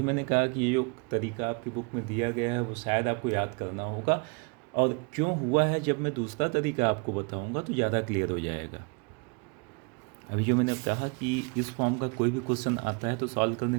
मैंने कहा कि ये जो तरीका आपकी बुक में दिया गया है वो शायद आपको याद करना होगा, और क्यों हुआ है जब मैं दूसरा तरीका आपको बताऊंगा तो ज़्यादा क्लियर हो जाएगा। अभी जो मैंने कहा कि इस फॉर्म का कोई भी क्वेश्चन आता है तो सॉल्व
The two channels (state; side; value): quieter; left; 33.2 dB